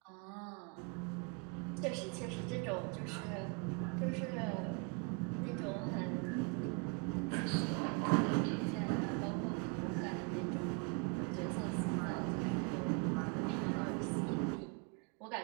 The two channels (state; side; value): quieter; left; 32.6 dB